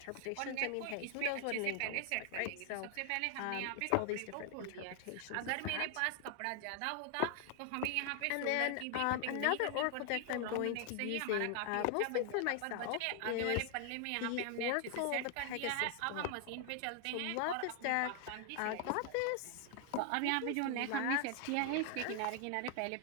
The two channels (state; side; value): different; both; correlation 0.00